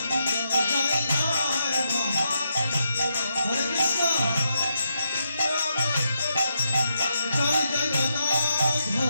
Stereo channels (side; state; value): both; inverted; correlation -0.82